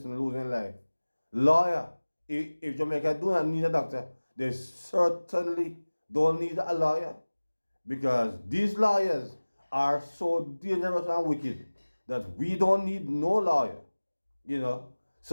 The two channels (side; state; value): both; inverted; correlation -1.00